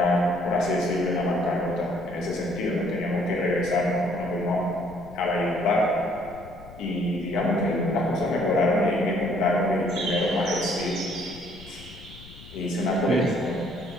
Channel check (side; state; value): left; noise; rumble, 18 dB below the sound